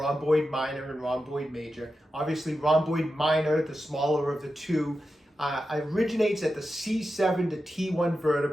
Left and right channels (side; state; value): both; normal; correlation 0.91